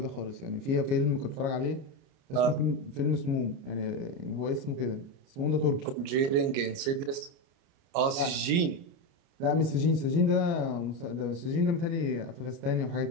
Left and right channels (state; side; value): late; left; 29 ms